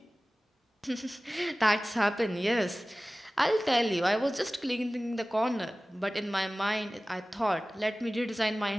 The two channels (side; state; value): both; normal; correlation 0.97